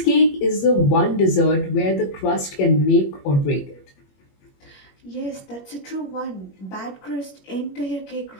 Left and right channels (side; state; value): right; late; 21 ms